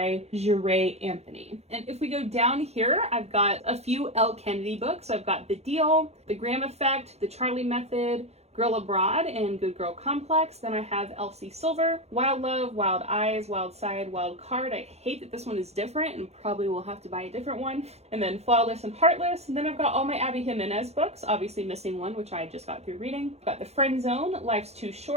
Jure Anthony. And if we go down here, I've got a few Elle Kennedy books. I've got The Deal, The Graham Effect, The Charlie Method, Girl Abroad, and Good Girl Complex. Then I have Elsie Silver, Wild Love, Wild Eyes, Wild Side, Wild Card. I hate that this one is different and probably will have to buy a different one. And then Flawless and Heartless. And then I've got all my Abby Jimenez books, obviously missing one, which I just got through reading. I've got The Friend Zone, Life's Too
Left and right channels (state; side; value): late; left; 0.31 ms